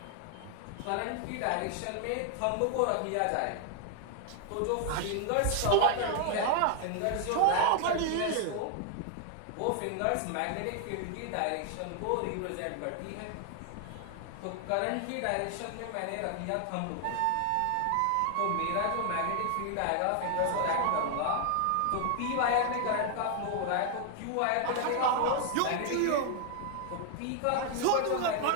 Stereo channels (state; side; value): different; both; correlation 0.00